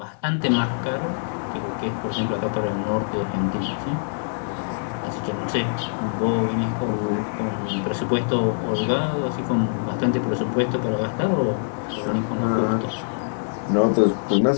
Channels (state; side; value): silent; right; 63 dB below the other